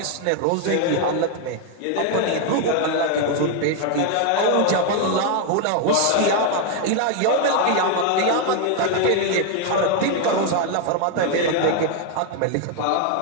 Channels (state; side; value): different; both; correlation 0.01